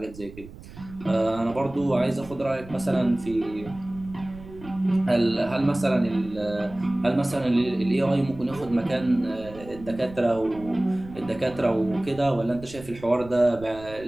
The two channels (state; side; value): noise; right; rumble, 17 dB below the sound